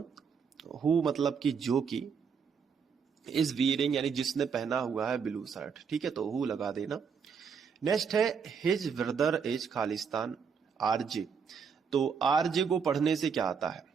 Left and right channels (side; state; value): left; quieter; 6.3 dB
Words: हु मतलब कि जो कि, इज वियरिंग यानी जिसने पहना हुआ है ब्लू शर्ट, ठीक है, तो हु लगा देना। नेक्स्ट है his brother is Khalistan RJ. तो आरजे को पढ़ने से क्या आता है,